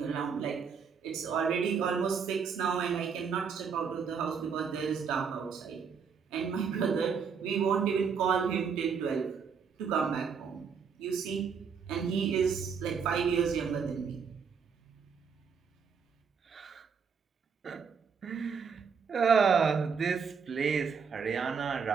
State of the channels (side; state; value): left; quieter; 6.2 dB